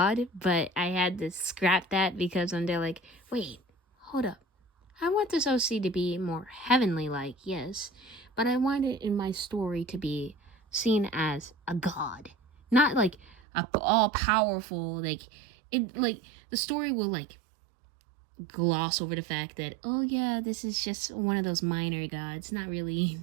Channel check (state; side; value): drops out; left; at 13.4 s